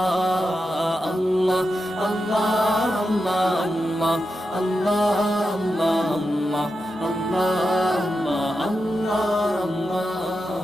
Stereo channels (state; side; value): normal; both; correlation 0.89